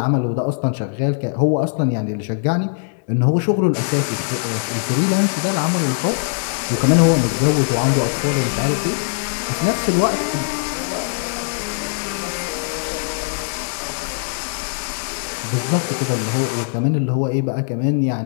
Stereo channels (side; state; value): right; silent; digital silence